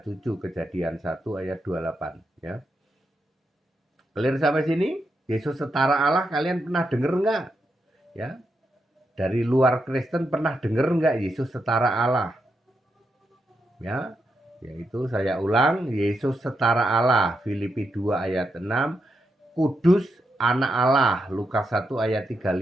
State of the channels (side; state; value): both; normal; correlation 0.84